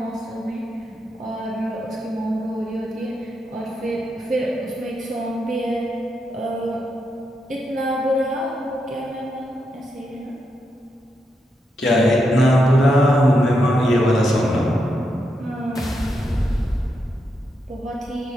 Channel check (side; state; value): both; normal; correlation 0.83